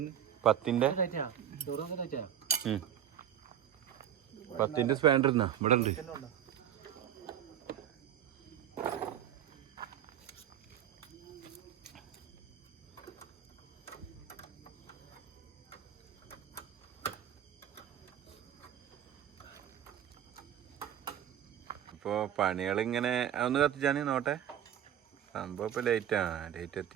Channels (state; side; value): quieter; left; 10.1 dB